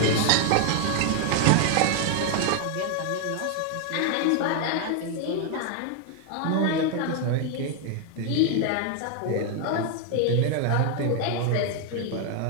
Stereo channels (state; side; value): different; both; correlation 0.01